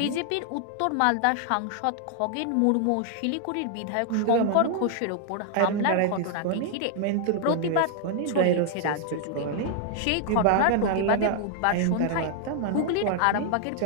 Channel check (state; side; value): different; both; correlation 0.00